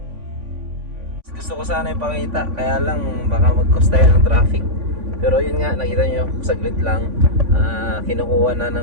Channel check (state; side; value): late; left; 3.5 ms